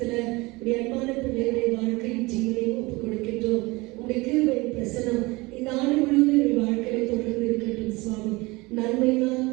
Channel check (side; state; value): left; quieter; 23.2 dB